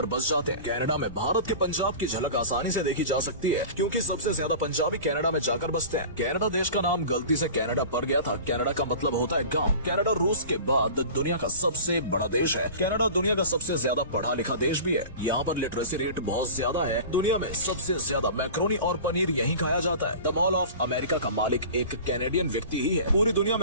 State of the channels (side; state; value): both; inverted; correlation -0.37